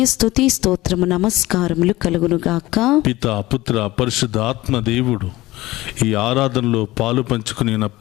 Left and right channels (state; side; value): quieter; right; 18.3 dB